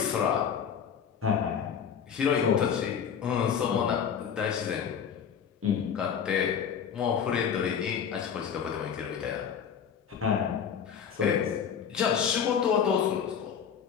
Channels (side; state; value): right; quieter; 7.6 dB